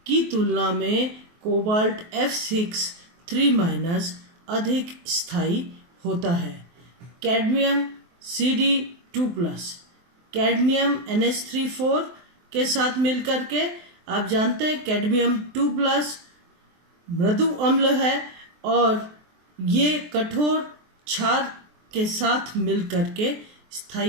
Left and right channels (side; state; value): left; late; 23 ms